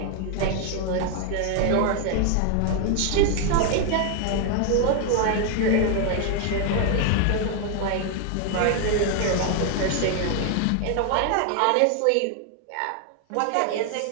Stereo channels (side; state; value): both; different; correlation 0.00